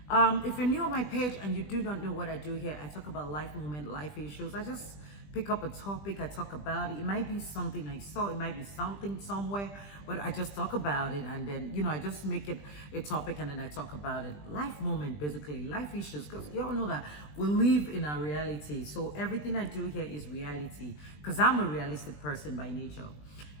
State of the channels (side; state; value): right; late; 20 ms